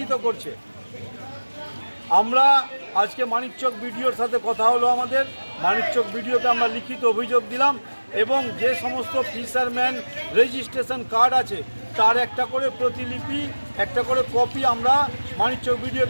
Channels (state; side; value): inverted; both; correlation -1.00